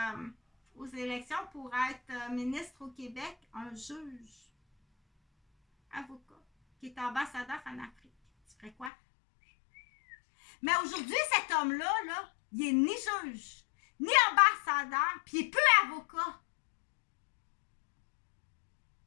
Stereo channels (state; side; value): drops out; right; at 8.9 s